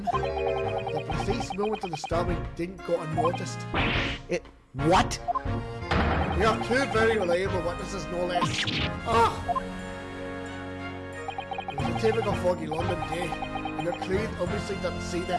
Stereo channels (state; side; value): identical; both; correlation 1.00